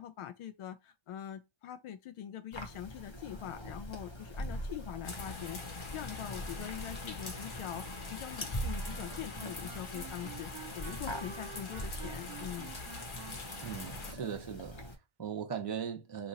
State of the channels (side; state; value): right; late; 1.4 ms